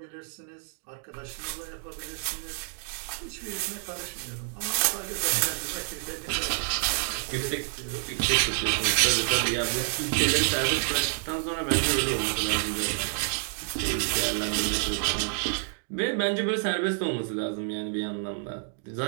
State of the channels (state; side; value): silent; left; 59 dB below the other